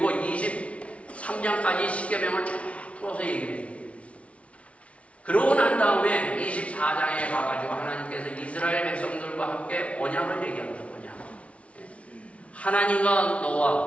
23장까지 십계명을 쫙 풀어서 얘기를 해줍니다. 그러고 난 다음에 24장에 가가지고 하나님께서 이스라엘 백성들과 함께 언약을 얘기합니다. 언약. 하나님과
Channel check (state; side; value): late; right; 0.063 ms